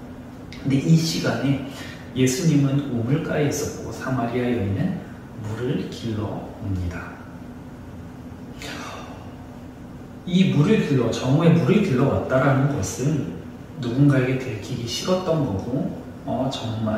근데 이 시간에 예수님은 우물가에 있었고 사마리아 여인은 물을 길러 옵니다. 이 정오에 물을 길러 왔다라는 것은 누군가에게 들키기 싫었던 거고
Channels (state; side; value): identical; both; correlation 1.00